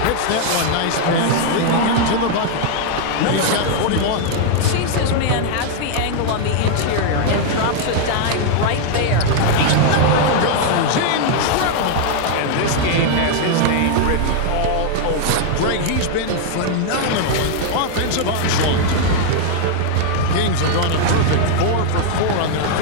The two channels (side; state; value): both; different; correlation 0.00